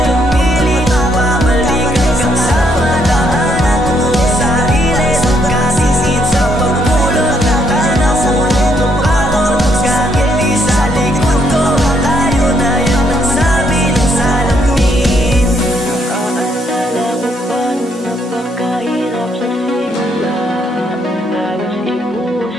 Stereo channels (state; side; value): normal; both; correlation 0.72